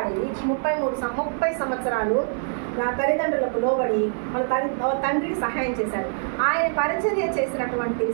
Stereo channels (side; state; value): left; silent; digital silence